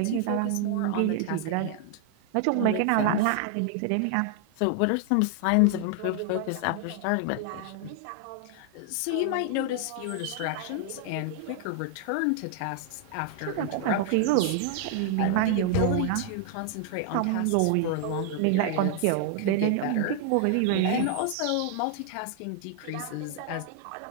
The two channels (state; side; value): different; both; correlation 0.00